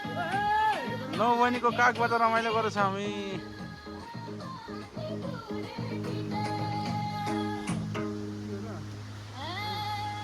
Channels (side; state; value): both; identical; correlation 1.00